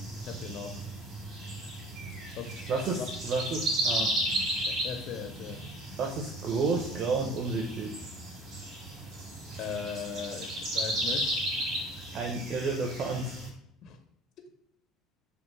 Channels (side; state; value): both; normal; correlation 0.46